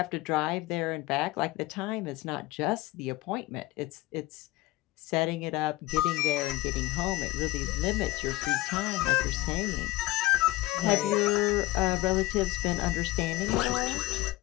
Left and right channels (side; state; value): right; quieter; 18.4 dB